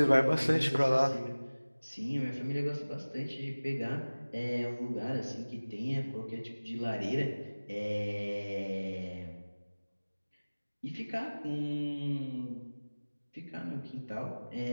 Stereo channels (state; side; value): inverted; both; correlation -1.00